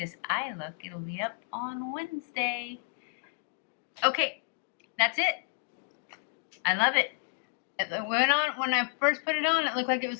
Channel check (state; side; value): quieter; right; 39.7 dB